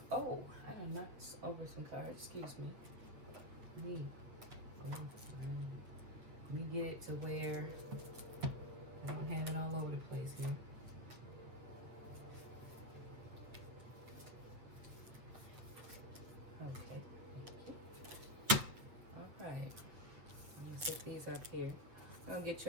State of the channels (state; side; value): late; left; 8.1 ms